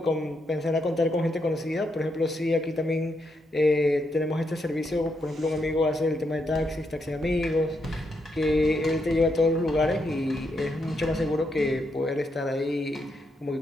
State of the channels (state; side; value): normal; both; correlation 0.80